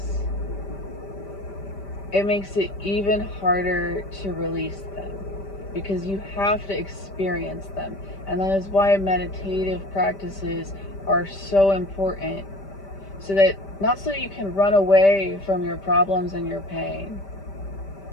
it makes it even harder to release them because you have to experience them. And that is why meditative practices are so important, so that not so you can run away from your problems and your pain,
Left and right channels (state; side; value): late; right; 5.1 ms